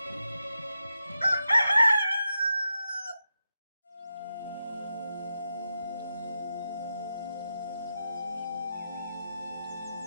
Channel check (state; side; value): inverted; both; correlation -0.88